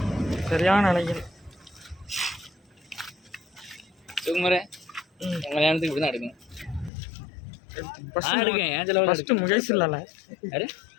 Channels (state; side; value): drops out; right; at 6.9 s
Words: சரியான அலைகள். சுகுமாரே உங்கள் கல்யாணத்துக்கு இப்படி தான் எடுக்கணும். எடுக்கேன் ஏன் செலவு. ஃபஸ்ட்டு முகேஷ் இல்லைல்ல? யாரு